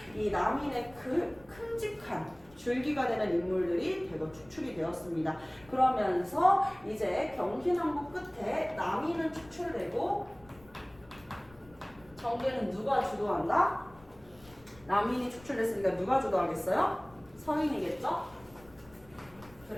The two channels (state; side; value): noise; left; rumble, 24 dB below the sound